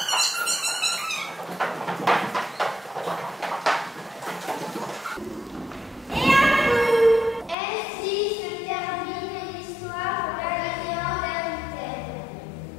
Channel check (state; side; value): drops out; right; at 7.6 s